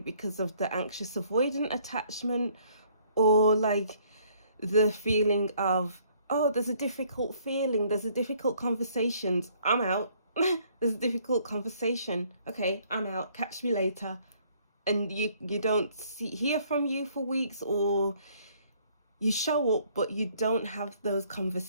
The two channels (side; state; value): both; inverted; correlation -0.63